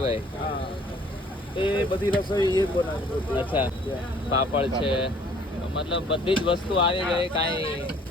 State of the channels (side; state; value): both; normal; correlation 0.57